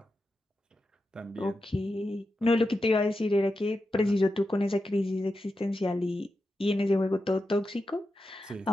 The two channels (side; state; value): both; normal; correlation 0.89